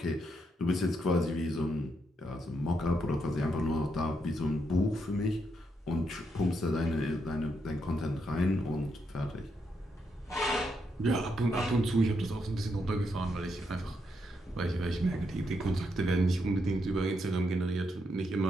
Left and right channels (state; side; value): normal; both; correlation 0.79